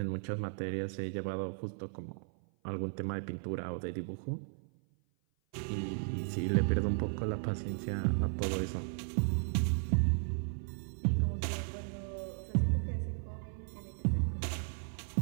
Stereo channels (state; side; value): silent; left; 54 dB below the other